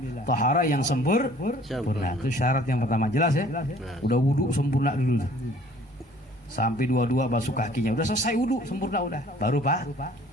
taharah yang sempurna. Itu syarat yang pertama, jelas ya? Udah wudu sempurna dulu, sampai dua-dua basuh kakinya, udah selesai wudu sempurna, udah baru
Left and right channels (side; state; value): both; normal; correlation 0.54